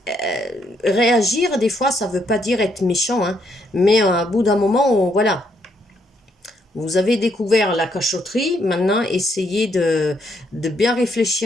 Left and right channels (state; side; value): normal; both; correlation 0.74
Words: Réagir, des fois, ça veut pas dire être méchant, hein, mais à bout d'un moment, voilà, vous avez découvert la cachotterie, maintenant essayez de bien